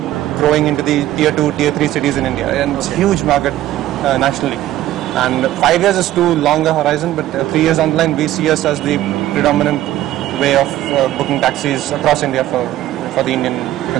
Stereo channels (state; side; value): quieter; left; 14.1 dB